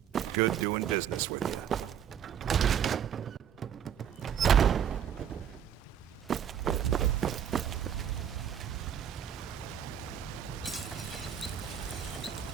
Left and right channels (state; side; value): quieter; left; 8.9 dB